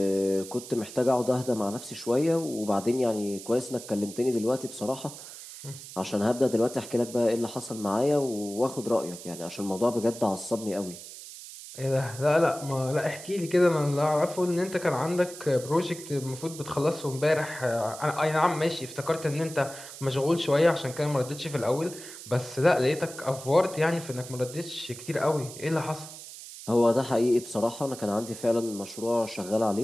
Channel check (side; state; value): right; noise; hiss, 14 dB below the sound